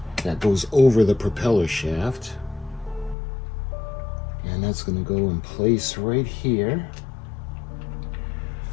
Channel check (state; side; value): drops out; right; at 3.2 s